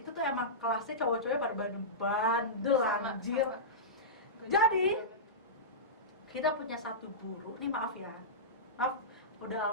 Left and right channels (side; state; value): both; normal; correlation -0.16